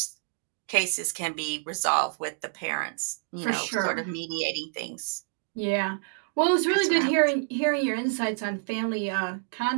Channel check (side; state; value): left; silent; digital silence